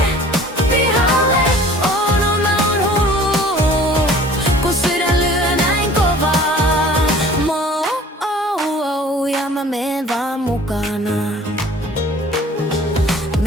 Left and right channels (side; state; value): both; normal; correlation 0.48